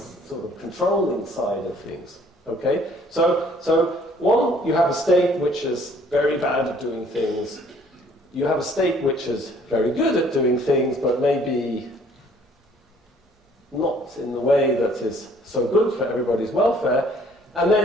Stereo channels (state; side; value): normal; both; correlation 0.59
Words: sort of controlling side of things. Okay, so one, you have a state which is very bad at doing things. You have a state which is very good at doing things, but maybe not in the way that is so good for everybody's welfare. And